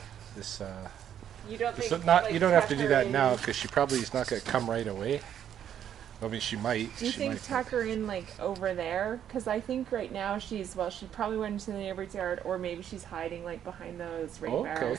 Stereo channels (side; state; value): left; quieter; 9.7 dB